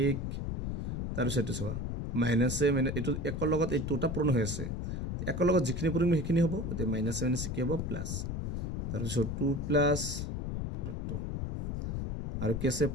1। তার সাথে সবা মাইনাসে মানে এটো একর লগত এই দুটা পূরণ হয়েছে, একর লগত যিখিনি পূরণ সেইখিনি হ'ব, তে মাইনাসে মাইনাসে কি হ'ব প্লাস। তার পিছত 2 প্লাস √2 আর কি আছে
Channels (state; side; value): noise; left; rumble, 2 dB below the sound